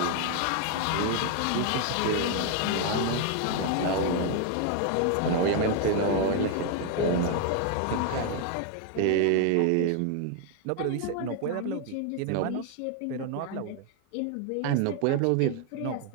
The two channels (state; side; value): different; both; correlation 0.00